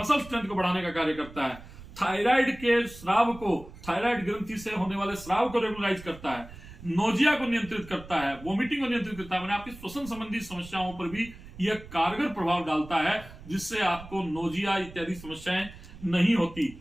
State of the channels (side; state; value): right; noise; rumble, 17 dB below the sound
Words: स्ट्रेंथ को बढ़ाने का कार्य करता है। थायराइड के स्राव को, थायराइड ग्रंथि से होने वाले स्राव को रेगुलराइज करता है। नोजिया को नियंत्रित करता है, वोमिटिंग को नियंत्रित करता है। मैंने आपकी श्वसन संबंधी समस्याओं पर भी यह कारगर प्रभाव डालता है, जिससे आपको नोजिया इत्यादि समस्याएं नहीं